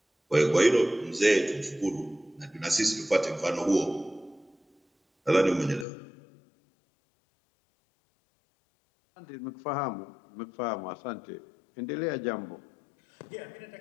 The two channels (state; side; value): drops out; right; at 5.9 s